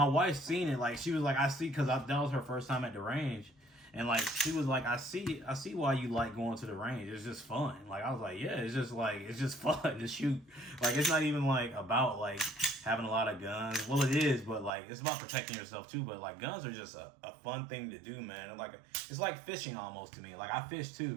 wife seen it. Like, she was like, I see, because that was her first time at the range. And, like, she was like, I see why you like going to the range. It's just fun. Like, I was like, yeah, it's just fun to shoot. Like, it's not even, like, about, like, having a lot of guns. Well, it is, but, like, it's about protecting yourself, too. But, like, guns are just a fun thing to do, man. And, like, it's like fishing almost to me. Like, I fish,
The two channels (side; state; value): left; drops out; at 14.7 s